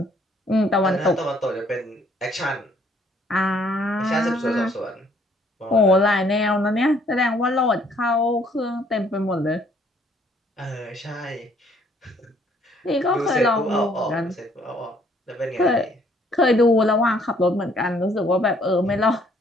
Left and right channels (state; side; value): normal; both; correlation 0.63